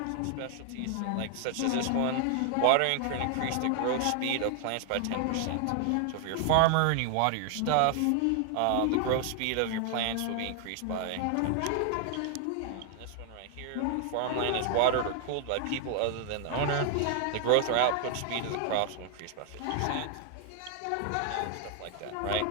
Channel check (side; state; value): both; different; correlation 0.00